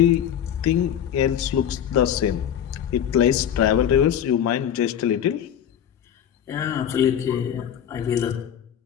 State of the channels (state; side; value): quieter; right; 9.6 dB